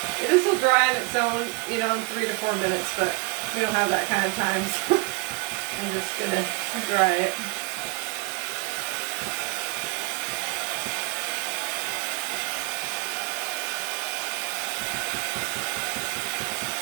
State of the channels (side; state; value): left; quieter; 28.7 dB